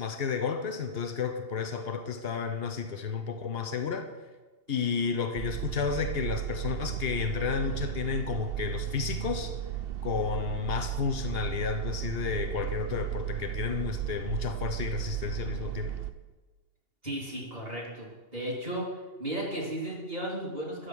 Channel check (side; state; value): left; late; 2.8 ms